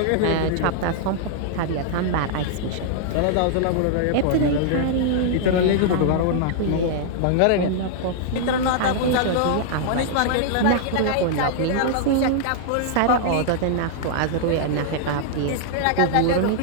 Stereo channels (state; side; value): different; both; correlation -0.01